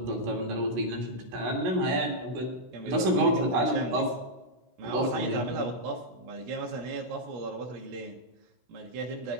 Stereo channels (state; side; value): late; left; 16 ms